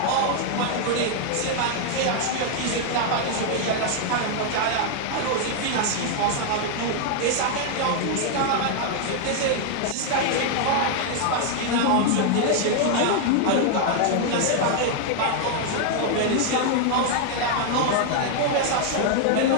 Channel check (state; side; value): different; both; correlation 0.00